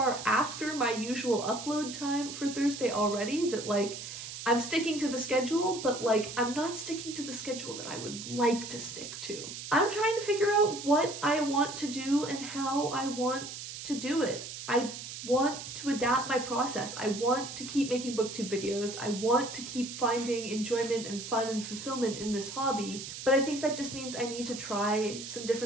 after my usual upload time for Thursday already that like I'm sticking to the schedule, but like I'm not sticking to the schedule that I would like to stick to. I'm trying to figure out what I want to do and how I want to do it. I want to adapt my process. I want to keep making booktube videos. I want to keep finding enjoyment and fun and fulfillment in this hobby, but I think that just means I need to try some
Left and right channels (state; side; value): noise; right; hiss, 9 dB below the sound